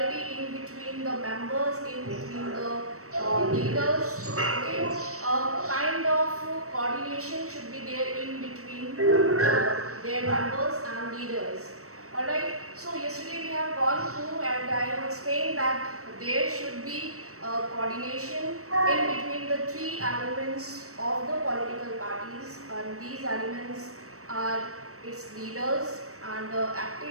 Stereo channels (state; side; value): late; left; 0.65 ms